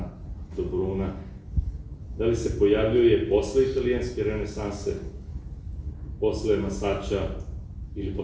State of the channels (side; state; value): both; identical; correlation 1.00